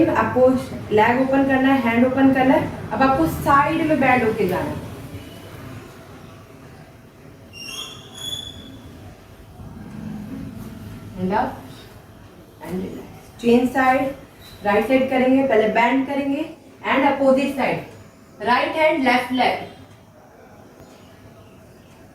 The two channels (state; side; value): identical; both; correlation 1.00